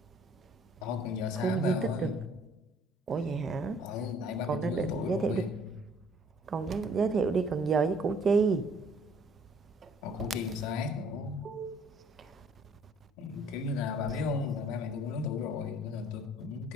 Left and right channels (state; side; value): normal; both; correlation 0.59